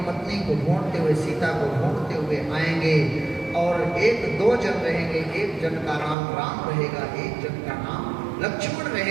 पत्नी को ढूंढते हुए, सीता को ढूंढते हुए आएंगे और एक दो जन रहेंगे। एक जन का नाम राम रहेगा, एक जन का नाम लक्ष्मण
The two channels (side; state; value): left; drops out; at 6.2 s